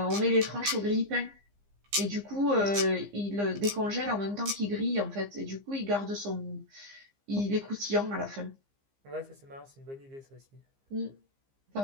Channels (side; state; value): left; late; 15 ms